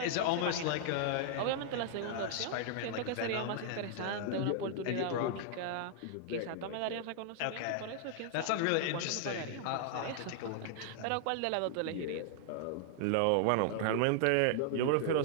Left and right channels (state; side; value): different; both; correlation -0.01